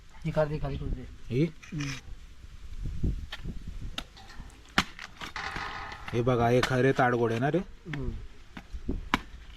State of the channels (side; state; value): both; identical; correlation 1.00